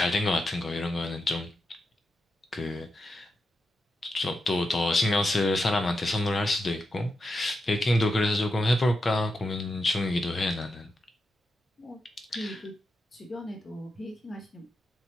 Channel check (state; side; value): normal; both; correlation 0.87